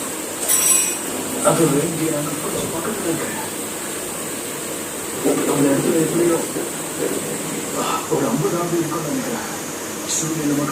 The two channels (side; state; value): both; identical; correlation 1.00